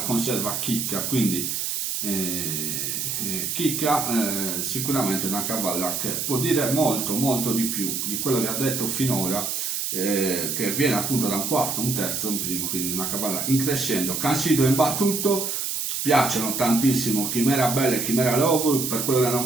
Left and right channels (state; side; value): noise; right; hiss, 2 dB below the sound